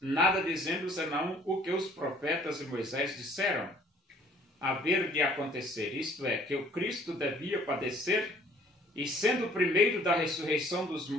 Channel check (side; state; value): both; normal; correlation 0.57